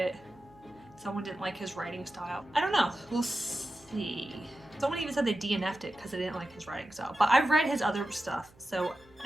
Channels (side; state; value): right; noise; hum, 27 dB below the sound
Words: Someone didn't like his writing style. I don't know, we'll see. Someone even said they DNF'd it because they didn't like his writing style. But I've read his other stuff, so